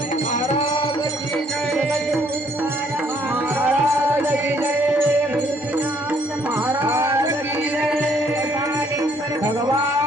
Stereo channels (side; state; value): both; normal; correlation 0.65